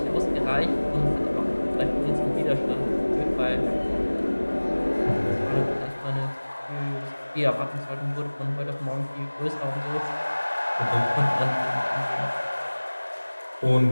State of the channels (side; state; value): both; inverted; correlation -1.00